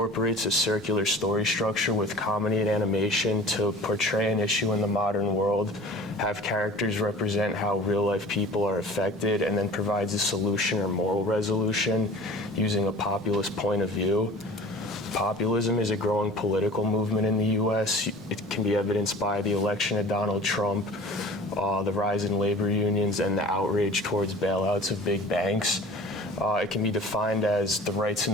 a circular story structure with comedy and animation to portray an issue in the modern world, have characters represent how real-life people are affected, and then provides a solution or moral resolution using a populist point of view. Populism is a growing political movement in the U.S. It can be evidenced by the election of Donald Trump, the rise in labor unions, and the outrage towards bailouts of big banks. It can be defined as the rights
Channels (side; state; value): both; normal; correlation 0.43